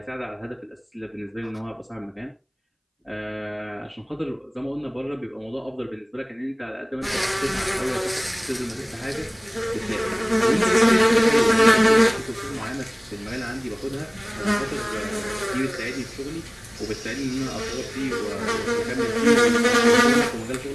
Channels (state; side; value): identical; both; correlation 1.00